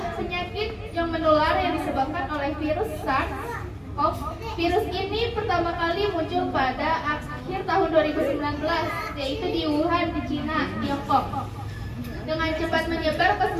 penyakit yang menular yang disebabkan oleh virus SARS-CoV. Virus ini pertama kali muncul pada akhir tahun 2019, yaitu di Wuhan, di Cina, Tiongkok. Dengan cepat menyebar ke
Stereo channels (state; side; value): identical; both; correlation 1.00